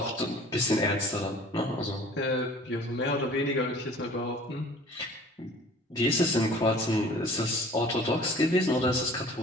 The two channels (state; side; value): normal; both; correlation 0.48